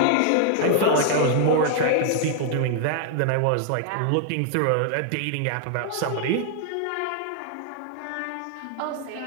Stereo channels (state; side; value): different; both; correlation 0.00